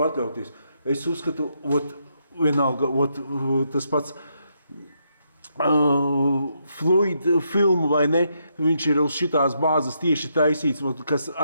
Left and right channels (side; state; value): both; inverted; correlation -0.78